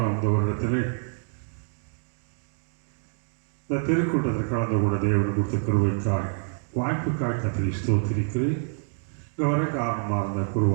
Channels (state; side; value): silent; left; 60 dB below the other